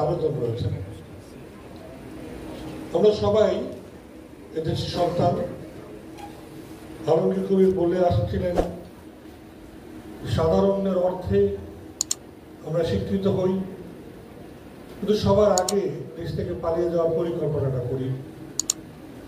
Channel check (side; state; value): both; identical; correlation 1.00